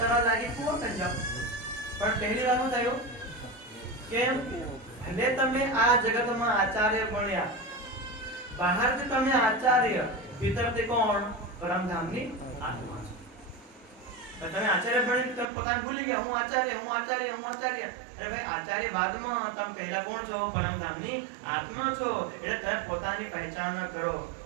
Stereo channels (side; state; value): left; drops out; at 15.5 s